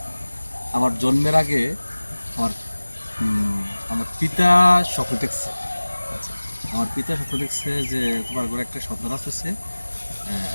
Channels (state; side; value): inverted; both; correlation -1.00